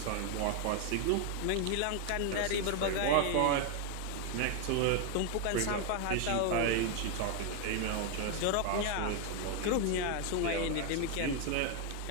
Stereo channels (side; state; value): both; different; correlation 0.01